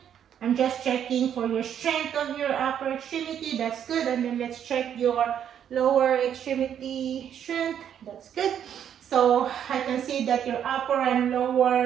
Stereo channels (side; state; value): left; quieter; 9.2 dB